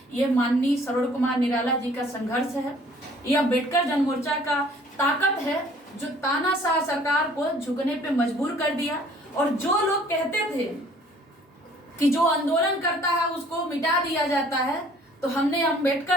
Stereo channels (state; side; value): normal; both; correlation 0.56